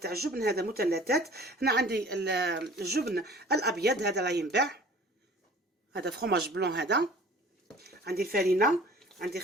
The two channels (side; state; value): both; normal; correlation 0.47